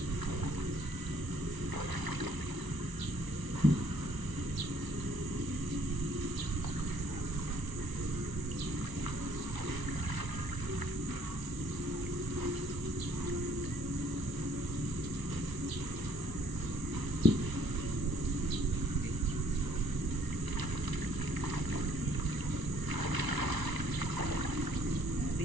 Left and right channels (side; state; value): left; late; 1.0 ms